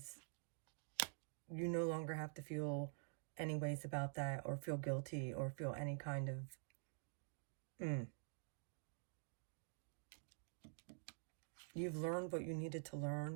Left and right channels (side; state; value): left; silent; digital silence